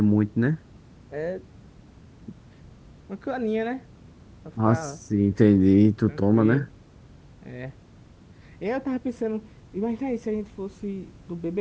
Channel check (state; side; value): identical; both; correlation 1.00